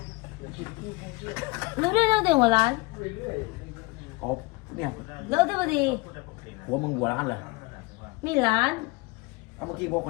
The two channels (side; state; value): right; quieter; 23.7 dB